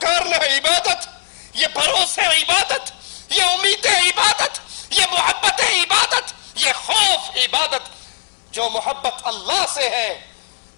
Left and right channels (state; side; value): silent; right; 63 dB below the other